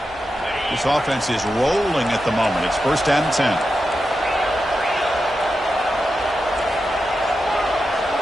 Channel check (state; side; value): normal; both; correlation 0.89